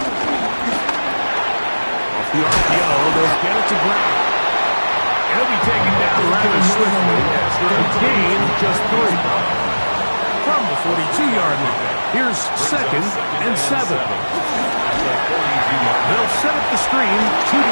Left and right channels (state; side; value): inverted; both; correlation -1.00